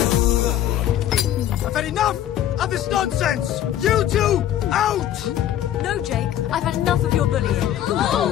I've had enough of this nonsense! You two, out! No, Jake, I've had enough of your bullying. Oh,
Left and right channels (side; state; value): right; quieter; 11.6 dB